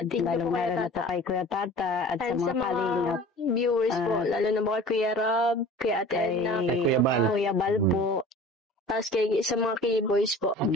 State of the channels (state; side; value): normal; both; correlation 0.42